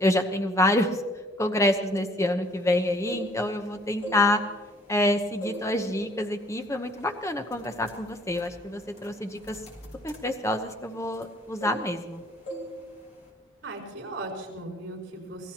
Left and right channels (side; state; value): both; normal; correlation 0.59